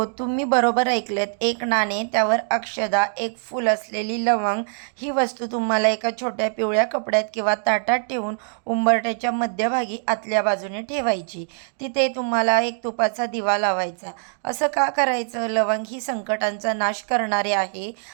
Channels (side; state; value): left; silent; digital silence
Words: तुम्ही बरोबर ऐकलेत. 1 नाणे, त्यावर अक्षदा, 1 फूल असलेली लवंग. ही वस्तू तुम्हाला एका छोट्या पिवळ्या कपड्यात किंवा ताटात ठेवून उंबरठ्याच्या मध्यभागी आतल्या बाजूने ठेवायची. तिथे तुम्हाला 1 तुपाचा दिवा लावायचा. असं का करायचं? लवंग ही संकटांचा नाश करणारे आहे,